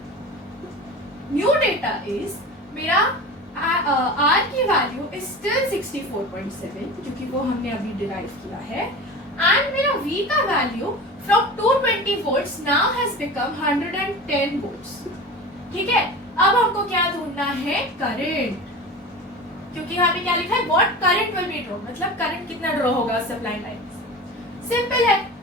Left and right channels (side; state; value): both; normal; correlation 0.32